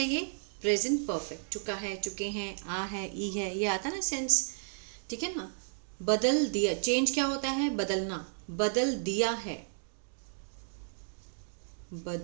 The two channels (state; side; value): silent; left; digital silence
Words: ये? Present perfect. चुका है, चुके हैं, आ है, ई है, ये आता ना सेंस, ठीक है ना। बदल दिया, चेंज क्या होता है? बदलना। बदल दिया है,